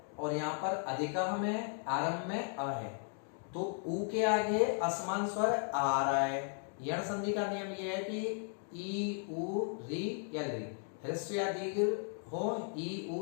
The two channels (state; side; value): silent; right; 54 dB below the other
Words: और यहाँ पर अधिकः में आरंभ में अ है, तो उ के आगे असमान स्वर आ रहा है। यण संधि का नियम यह है कि ई उ री या री, ह्रस्व या दीर्घ हो, ई